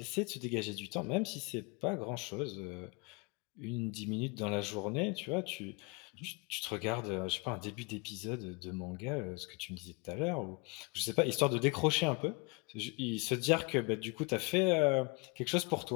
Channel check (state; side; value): quieter; right; 29.5 dB